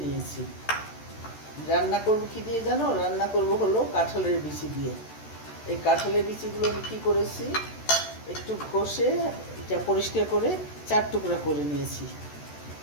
নিয়েছি। রান্না করব কি দিয়ে জানো? রান্না করব হলো কাঁঠালের বিচি দিয়ে। এই কাঁঠালের বিচিগুলো আমি কী করেছি, একটু ঘষে এটা পরিষ্কার করে 4 টুকরা করে নিয়েছি।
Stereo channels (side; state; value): right; late; 13 ms